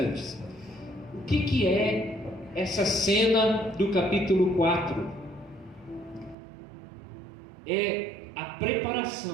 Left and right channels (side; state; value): left; drops out; at 6.4 s